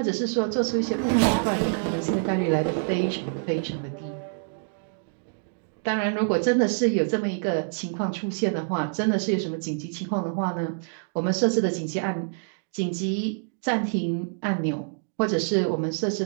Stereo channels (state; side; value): silent; left; digital silence